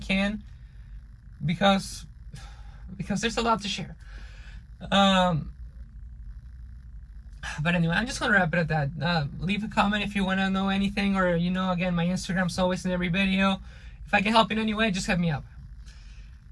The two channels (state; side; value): identical; both; correlation 1.00